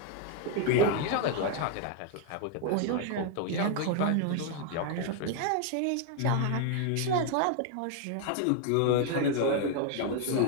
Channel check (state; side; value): different; both; correlation 0.01